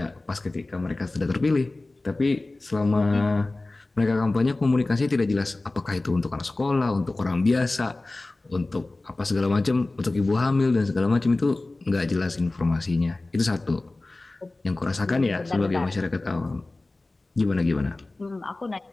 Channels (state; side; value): quieter; right; 3.0 dB